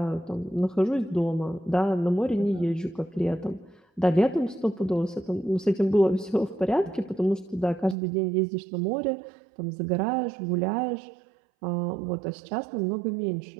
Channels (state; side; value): drops out; left; at 8.0 s